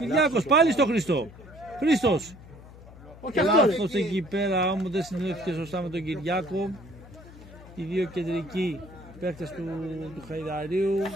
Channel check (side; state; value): left; noise; hum, 18 dB below the sound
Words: πάλι στον Χρήστο. Χρήστος. Λάθος εκεί πέρα όμως, δεν συνδέθηκε σωστά με τον Κυριάκο. Οι δύο κεντρικοί παίκτες του Χαϊδαρίου